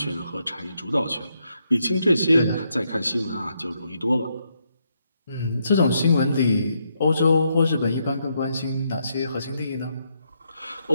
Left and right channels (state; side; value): inverted; both; correlation -0.78